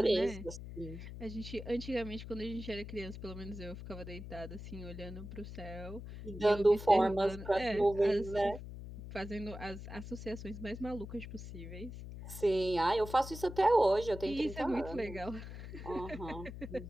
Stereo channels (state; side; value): noise; left; hum, 10 dB below the sound